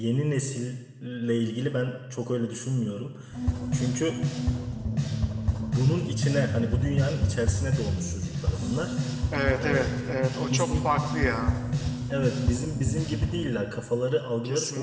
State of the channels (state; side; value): identical; both; correlation 1.00